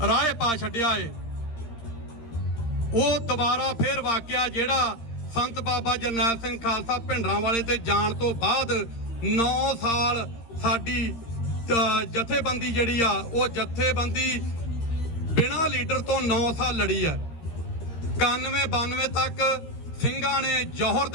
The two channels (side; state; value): right; late; 13 ms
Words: ਰਾਹ ਪਾ ਛੱਡਿਆ ਏ। ਉਹ ਦੁਬਾਰਾ ਫੇਰ ਵਾਕਿਆ ਜਿਹੜਾ ਸੰਤ ਬਾਬਾ ਜਰਨੈਲ ਸਿੰਘ ਖਾਲਸਾ ਭਿੰਡਰਾਂਵਾਲੇ ਤੇ ਜਾਣ ਤੋਂ ਬਾਅਦ 9 ਸਾਲ ਸਾਡੀ ਜਥੇਬੰਦੀ ਜਿਹੜੀ ਆ ਉਹ ਜਥੇਬੰਦੀ ਬਿਨਾਂ ਲੀਡਰ ਤੋਂ 9 ਸਾਲ ਲੜੀ ਆ। 91-92 ਤੱਕ ਸਿੰਘਾਂ ਨੇ ਜੌਹਰ